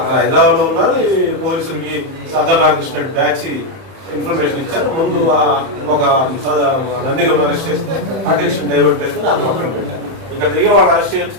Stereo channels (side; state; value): left; late; 31 ms